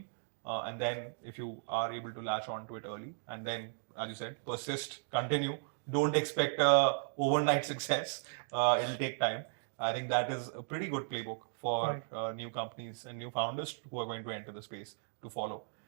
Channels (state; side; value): silent; left; digital silence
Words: and then if you are able to latch on to it early, and then, as you said, persist, continue. Don't expect a overnight success. It'll take time. I think that is a pretty good playbook for new companies and new founders who are going to enter the space to follow.